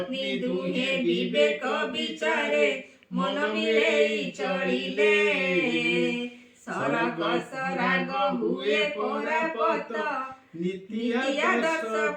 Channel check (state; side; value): identical; both; correlation 1.00